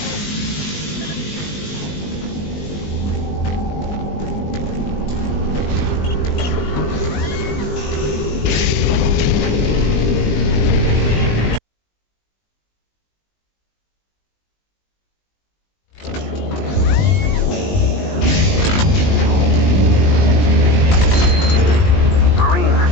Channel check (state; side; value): late; right; 20 ms